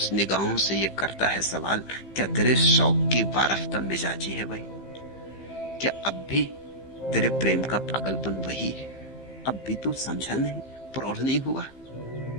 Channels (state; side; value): late; right; 15 ms